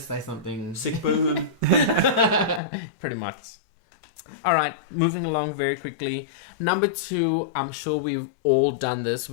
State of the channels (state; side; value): drops out; right; at 2.6 s